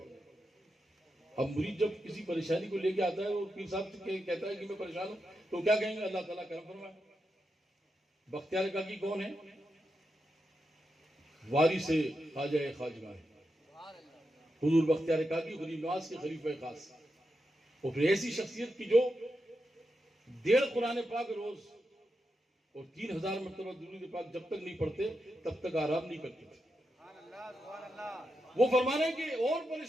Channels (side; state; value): both; normal; correlation 0.87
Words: اب مرید جب کسی پریشانی کو لے کے آتا ہے وہ پیر صاحب سے کہتا ہے کہ میں پریشان ہوں تو کیا کہیں گے؟ اللہ تعالیٰ کرم فرمائے. بختیار کاکی کون ہے؟ وارث خواجہ خواجگاہ حضور بختیار کاکی غریب نواز کے خلیفہ خاص. وہ پھر ایسی شخصیت کی جو 1.5 قرآن پاک روز اور 3000 مرتبہ درود پاک جب تک نہیں پڑھتے تب تک آرام نہیں کرتے تھے. وہ فرمانا ہے کہ اور